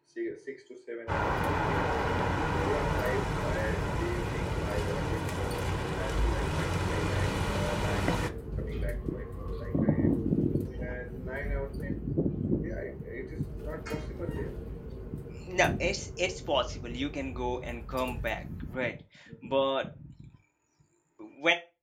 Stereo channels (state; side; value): identical; both; correlation 1.00